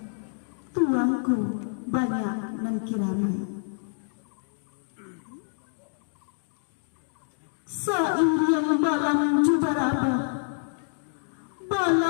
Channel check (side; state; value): right; silent; digital silence